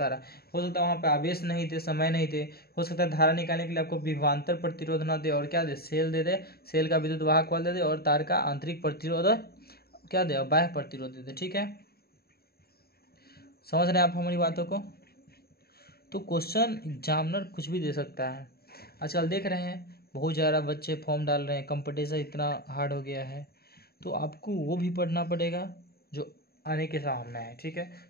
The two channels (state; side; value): late; right; 0.45 ms